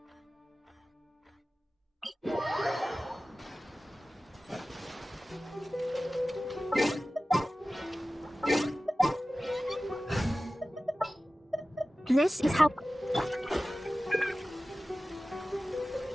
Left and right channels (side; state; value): both; normal; correlation 0.96